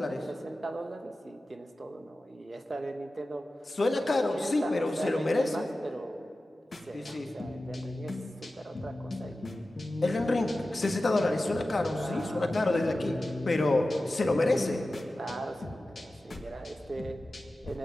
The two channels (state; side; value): normal; both; correlation 0.95